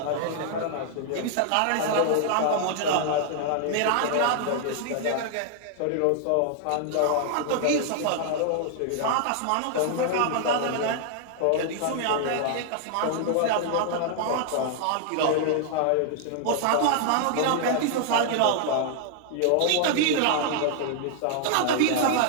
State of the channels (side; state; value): both; different; correlation 0.00